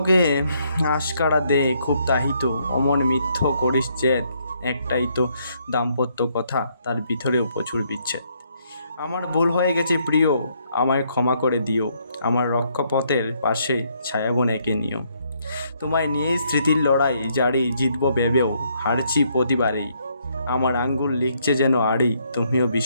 আশকারা দে খুব তাহিত, অমন মিথ্য করিস জেদ, একটাই তো দাম্পত্য কথা, তার ভিতরেও প্রচুর বিচ্ছেদ। আমার ভুল হয়ে গেছে প্রিয়, আমায় ক্ষমা করে দিও, আমার রক্ষপথের পাশে ছায়াবন এঁকে নিও। তোমায় নিয়েই স্মৃতির লড়াই জারি, জিতব ভেবেও হারছি প্রতিবারেই। আমার আঙ্গুল লিখছে যেন আড়ি, তুমিও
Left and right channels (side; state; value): both; inverted; correlation -0.71